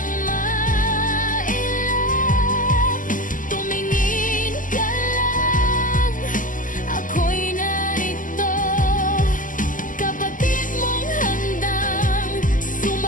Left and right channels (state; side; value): late; right; 0.38 ms